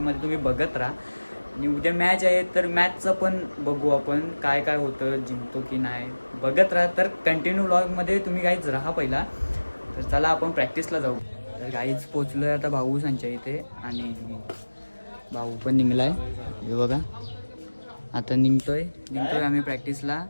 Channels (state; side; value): inverted; both; correlation -1.00